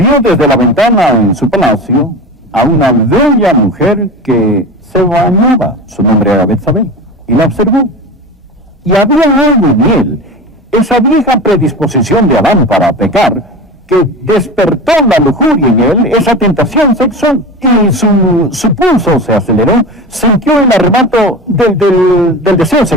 desde la ventana en su palacio a una bella mujer que se bañaba. Su nombre era Betsabé. Y la observó. Y había algo en él, esa vieja predisposición de Adán para pecar, que despertó la lujuria en él, esa tentación sexual, y su pulso se aceleró, sintió el arrebato del deseo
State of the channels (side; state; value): both; normal; correlation 0.29